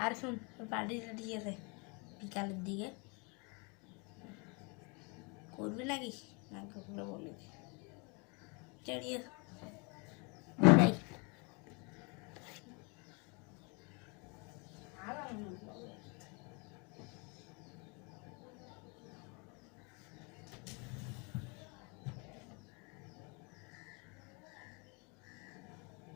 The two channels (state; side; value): quieter; right; 31.9 dB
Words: আর শুন, পার্টিটা ঠিক আছে বিকালের দিকে করবি নাকি? না করলে বলি চড়িয়ে যাই।